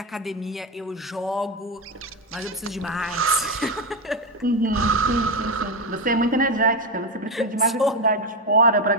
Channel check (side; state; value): both; normal; correlation 0.11